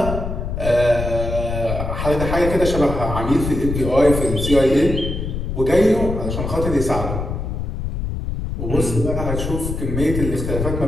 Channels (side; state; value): left; noise; rumble, 4 dB below the sound